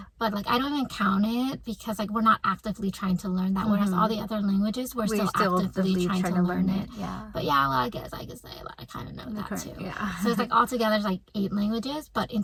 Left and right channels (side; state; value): both; identical; correlation 1.00